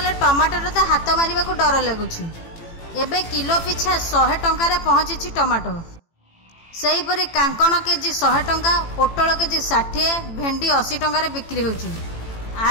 टमाटर तो हाथ मारिबा को डर लगुछि। एबे किलो पिछा 100 टंकार पहुंची टमाटो। सेहीपरि कांकण केजी 100 टंका, पोटल केजी 60, भेंडी 80 टंकार बिक्री होउछि।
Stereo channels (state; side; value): late; right; 18 ms